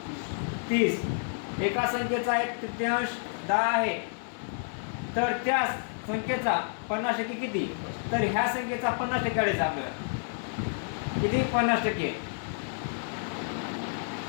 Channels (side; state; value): right; silent; 56 dB below the other